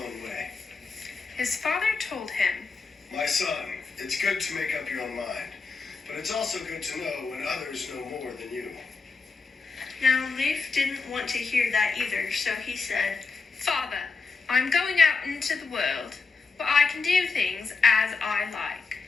way. His father told him, "My son, it's good to make up your own mind, but it's also good to know when others know more than you." Now, Leif didn't want to hear that either, so he said, "Father, I'm going out into the world, but I can do things as I like."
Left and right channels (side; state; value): right; quieter; 4.4 dB